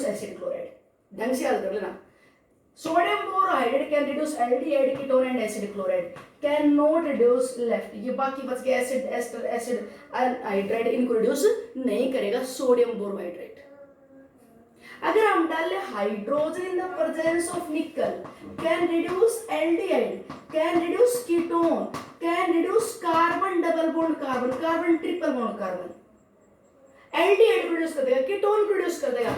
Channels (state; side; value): identical; both; correlation 1.00